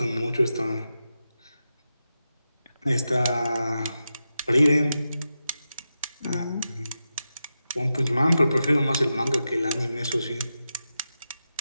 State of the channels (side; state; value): both; inverted; correlation -0.90